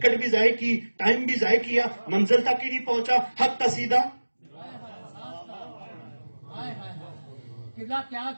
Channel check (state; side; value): inverted; both; correlation -1.00